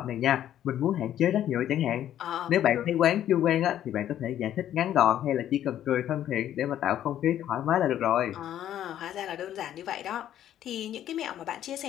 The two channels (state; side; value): quieter; right; 11.4 dB